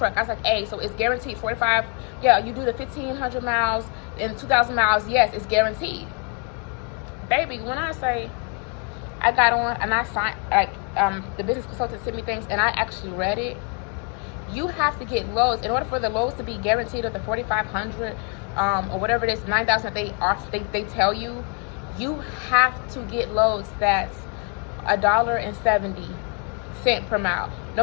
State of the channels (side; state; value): right; quieter; 38.1 dB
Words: I was like, hey, so it's guaranteed 45. Yeah, you do the 1,500 miles and 2,000 miles. Yes, it's guaranteed. Baby, when I say I got on and I signed, like, the business consultant sent me things and I actually read it. You have to get lows in order for the lows to be guaranteed, of the 4,500 or whatever it is, 9,000 they tell you. You have to get loads that's $1.70 per mile. No